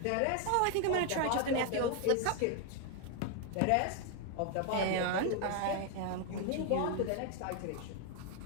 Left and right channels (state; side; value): different; both; correlation 0.01